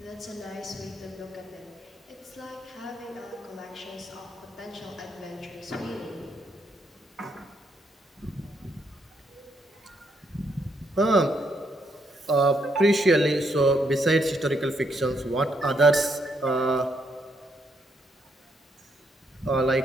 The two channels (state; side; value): normal; both; correlation 0.75